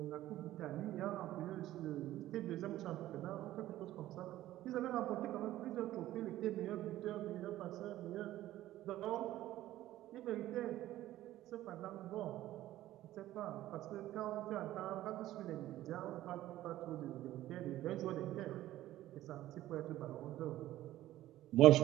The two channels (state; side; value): quieter; left; 14.5 dB